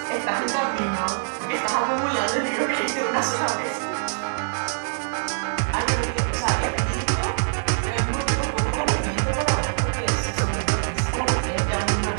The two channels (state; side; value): silent; left; 62 dB below the other